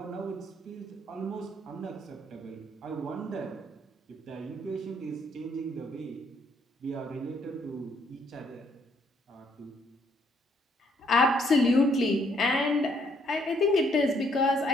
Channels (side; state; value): both; normal; correlation 0.68